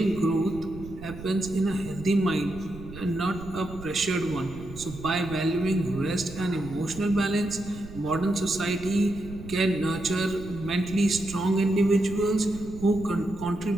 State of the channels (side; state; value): right; noise; rumble, 13 dB below the sound